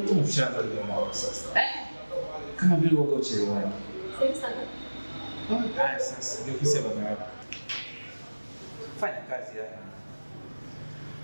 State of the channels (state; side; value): inverted; both; correlation -1.00